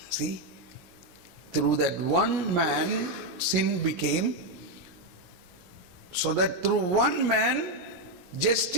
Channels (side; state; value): left; late; 17 ms